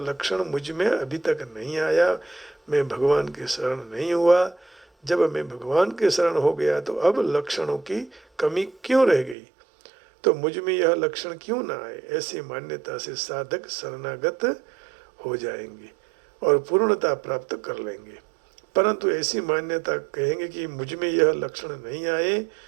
मुझ में अभी तक नहीं आया, मैं भगवान के शरण नहीं हुआ। जब मैं भगवान के शरण हो गया तो अब लक्षणों की कमी क्यों रह गई, तो मुझ में यह लक्षण क्यों ना आए? ऐसी मान्यता से साधक शरणागत हो जाएंगे और पूर्णता प्राप्त कर लेंगे। परंतु ऐसी मान्यता कहेंगे कि मुझ में यह लक्षण नहीं आए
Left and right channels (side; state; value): left; drops out; at 9.3 s